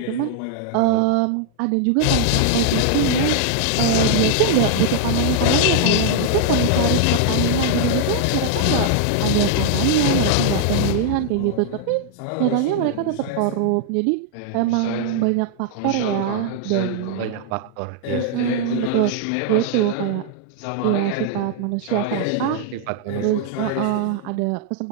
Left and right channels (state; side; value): different; both; correlation -0.01